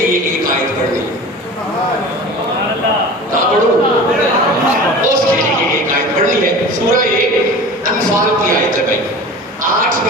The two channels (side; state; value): both; normal; correlation 0.37